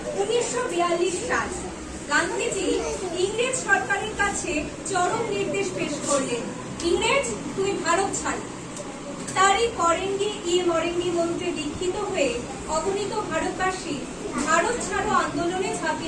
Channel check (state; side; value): identical; both; correlation 1.00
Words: 1942 সাল গান্ধীজি ইংরেজ সরকারের কাছে চরম নির্দেশ পেশ করলেন, ইংরেজ তুই ভারত ছাড়। তার এই করেঙ্গে ইয়ে মরেঙ্গে মন্ত্রে দীক্ষিত হয়ে অগণিত ভারতবাসী ভারত ছাড়ো আন্দোলনে